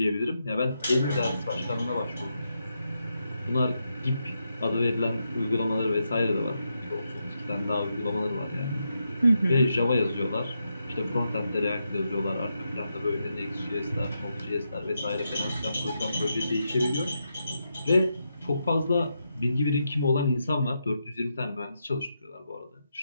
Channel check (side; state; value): both; inverted; correlation -0.84